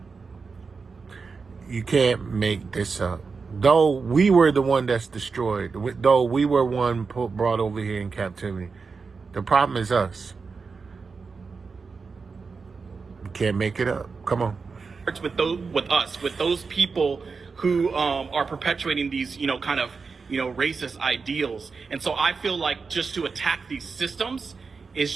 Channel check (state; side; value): quieter; left; 4.8 dB